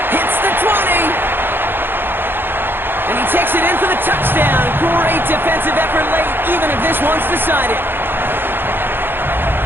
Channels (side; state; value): left; late; 0.10 ms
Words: Hits the 20. And he takes it in for the touchdown. Great defensive effort late, even if this one's decided.